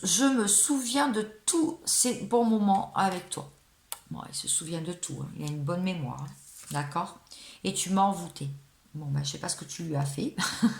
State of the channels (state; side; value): identical; both; correlation 1.00